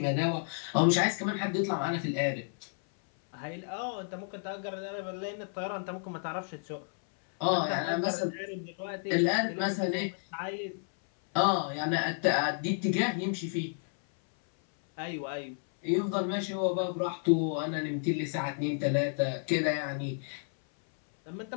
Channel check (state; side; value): silent; right; 57 dB below the other